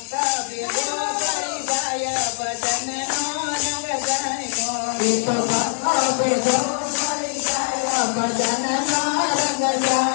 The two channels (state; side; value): silent; right; digital silence